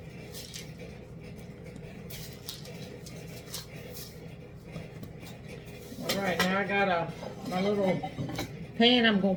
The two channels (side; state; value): both; identical; correlation 1.00